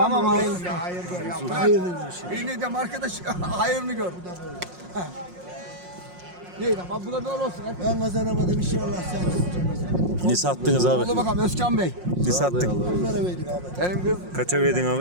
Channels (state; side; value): late; left; 5.6 ms